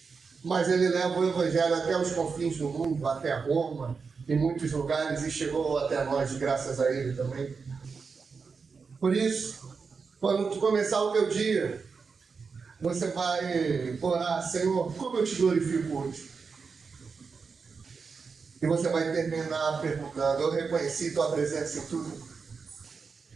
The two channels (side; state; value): left; quieter; 5.1 dB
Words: mas ele leva o evangelho até os confins do mundo, até Roma, em muitos lugares, e chegou até nós, graças a ele também. Por isso, quando tu começar o teu dia, você vai orar: Senhor, como eu te glorifico hoje? E você vai terminar perguntando: eu reconheci tua presença em tudo.